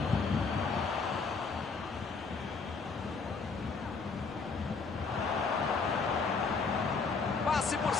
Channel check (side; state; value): right; quieter; 4.7 dB